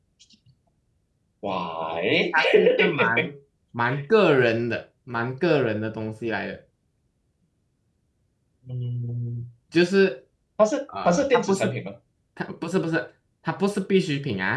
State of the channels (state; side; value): identical; both; correlation 1.00